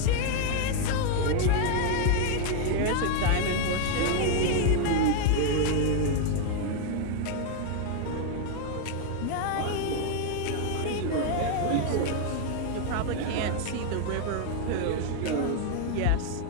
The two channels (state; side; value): different; both; correlation 0.00